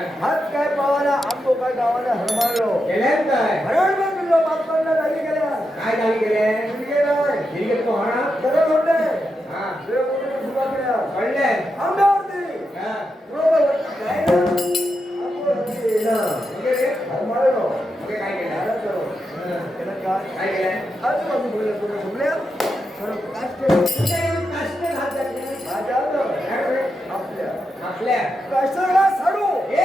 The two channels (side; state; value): both; normal; correlation 0.86